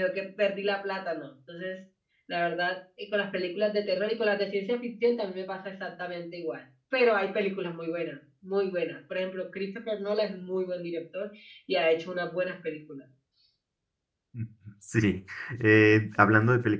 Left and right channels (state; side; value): identical; both; correlation 1.00